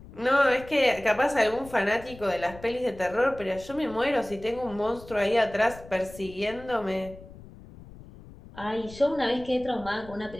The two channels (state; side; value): noise; left; rumble, 18 dB below the sound